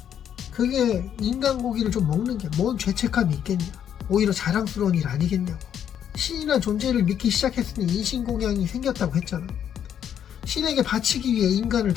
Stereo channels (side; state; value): right; quieter; 9.3 dB